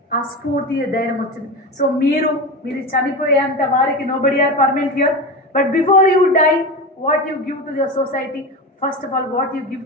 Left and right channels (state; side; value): normal; both; correlation 0.24